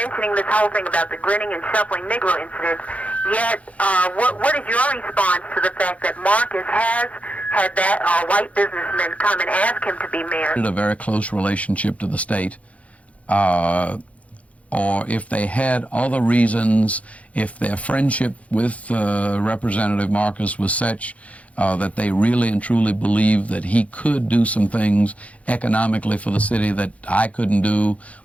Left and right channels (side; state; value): right; late; 0.066 ms